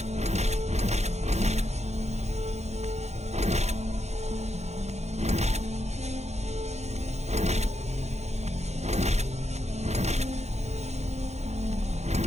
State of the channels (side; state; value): left; late; 0.32 ms